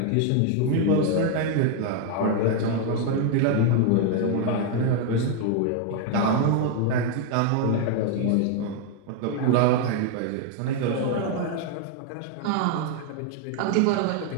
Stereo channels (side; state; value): both; different; correlation 0.00